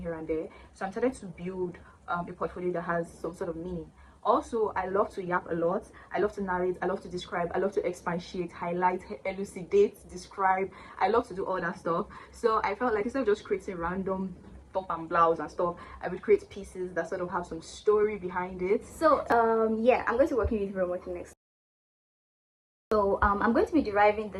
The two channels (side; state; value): both; identical; correlation 1.00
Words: here and there. So I'm started to build a portfolio that has some sort of meaning. Also, I love to yap a lot. I love to narrate. I love to describe. I love to expatiate, highlight, elucidate, describe. I love to do all that stuff. So I felt like instead of just creating random top and blouse and stuff, I would create pieces that sort of have some story behind it. So yeah, I'm going to be working with Romoki next. So I'm going to be deriving